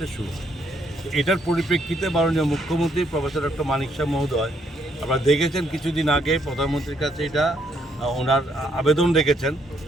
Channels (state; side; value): normal; both; correlation 0.71